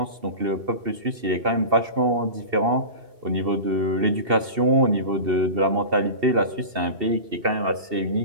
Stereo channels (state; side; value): late; left; 2.7 ms